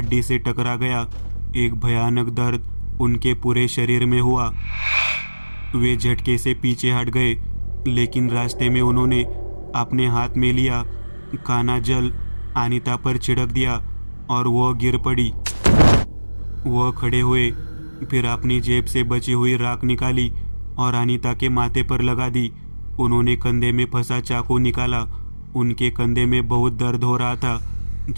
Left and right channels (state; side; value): inverted; both; correlation -1.00